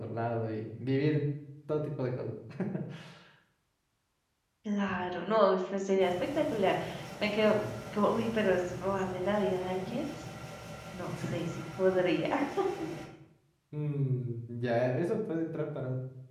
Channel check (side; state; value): both; identical; correlation 1.00